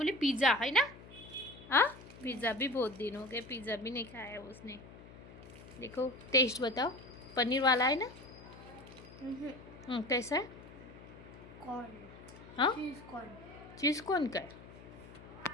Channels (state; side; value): noise; left; hum, 18 dB below the sound